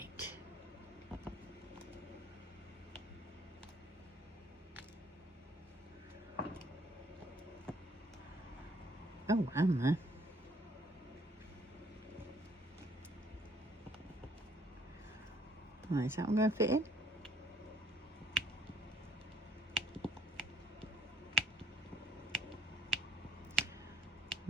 Oh, am there? Right, is that one going to fit in?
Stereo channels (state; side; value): normal; both; correlation 0.63